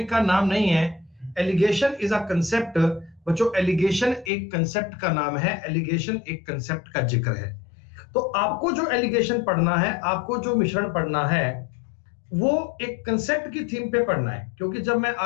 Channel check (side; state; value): right; drops out; at 4.3 s